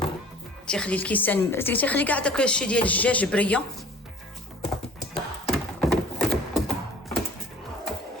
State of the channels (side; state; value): both; normal; correlation 0.48